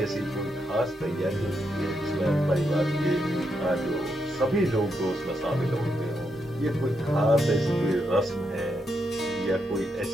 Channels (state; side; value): normal; both; correlation 0.81